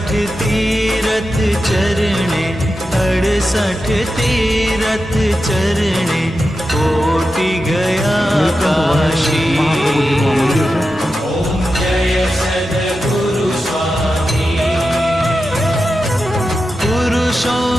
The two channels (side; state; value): both; normal; correlation 0.90